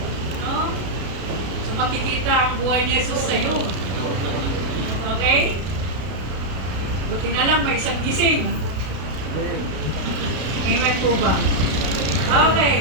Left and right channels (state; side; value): late; left; 32 ms